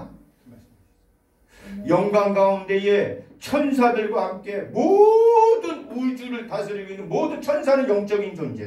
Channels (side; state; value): both; identical; correlation 1.00